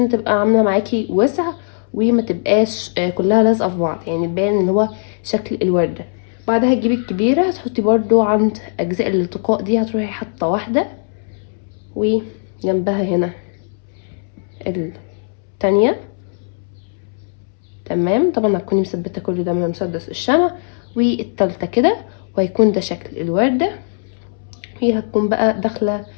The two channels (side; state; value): right; silent; 67 dB below the other